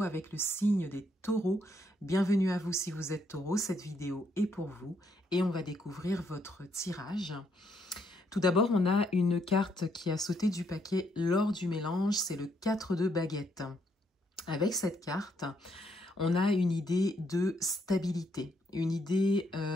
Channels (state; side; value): normal; both; correlation 0.73